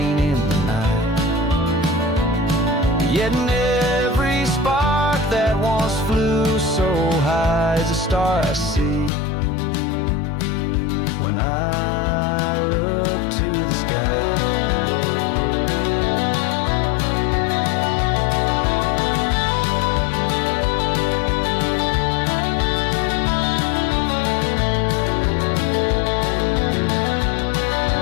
in the night. Yet in every spark that once flew so high is a star I see when I look to the sky.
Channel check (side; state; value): right; drops out; at 9.1 s